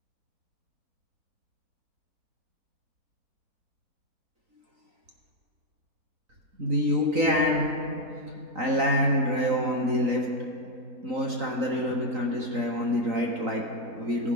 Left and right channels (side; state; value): left; late; 3.9 ms